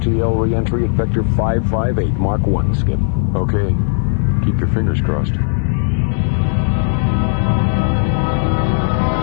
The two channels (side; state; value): right; silent; 69 dB below the other